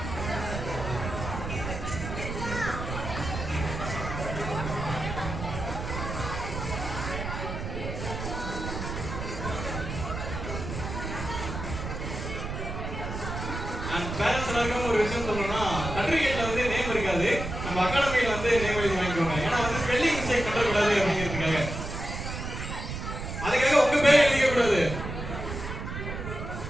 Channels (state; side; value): noise; right; rumble, 6 dB below the sound